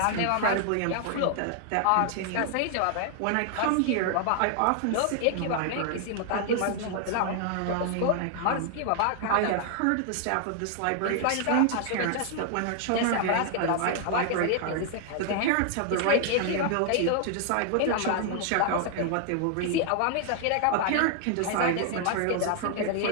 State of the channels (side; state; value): both; different; correlation 0.00